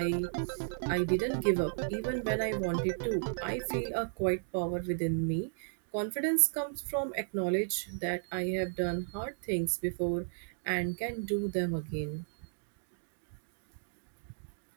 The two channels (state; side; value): silent; left; digital silence